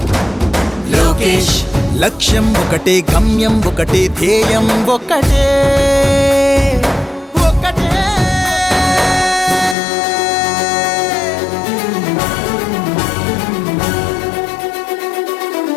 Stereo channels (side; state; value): right; drops out; at 9.8 s